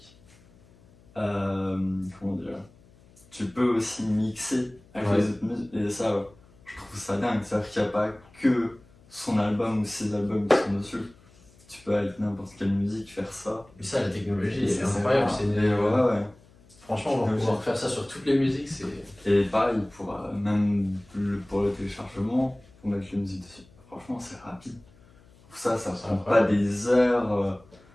comment dire, tu peux aussi mixer avec les autres musiques. Et ça, je trouve ça dingue. C'est-à-dire qu'il n'y a pas que son album ou ses albums qui sont dessus. Tu peux avec n'importe quelle musique faire ça. Mais ça, la technologie, c'est incroyable. Franchement, on va pouvoir faire ça sur toutes les musiques. Et pareil, même pour le téléchargement, pour mettre les musiques dessus. Franchement, c'est rapide. Ça prend pas des heures.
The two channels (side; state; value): left; noise; hum, 27 dB below the sound